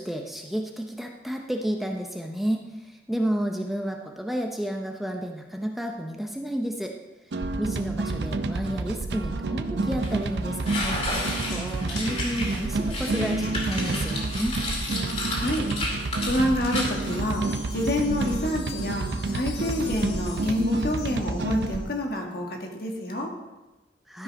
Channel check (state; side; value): normal; both; correlation 0.69